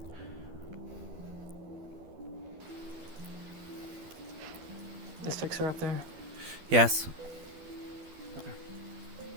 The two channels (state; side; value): late; left; 12 ms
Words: Is Fixer up there? Yes.